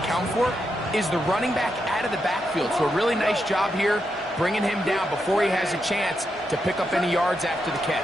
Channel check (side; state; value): both; normal; correlation 0.84